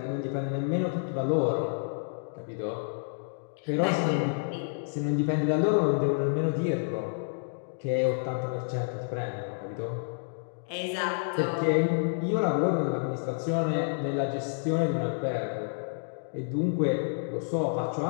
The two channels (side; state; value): right; silent; digital silence